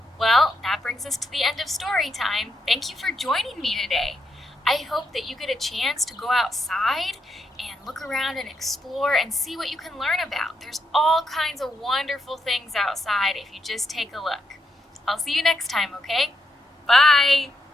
Well, that brings us to the end of story time. Thank you for joining me today. I hope that you get a chance to go outside and look around and explore and see what you can learn about. There's all kinds of wonderful things outside if you just take a look. I'll see you next time, okay? Bye!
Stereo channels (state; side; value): normal; both; correlation 0.82